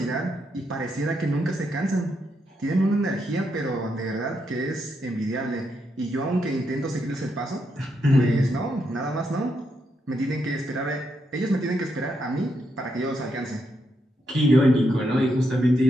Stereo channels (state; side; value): normal; both; correlation 0.80